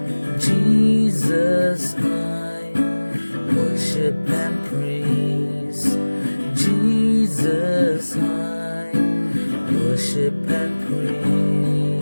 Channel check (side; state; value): both; inverted; correlation -1.00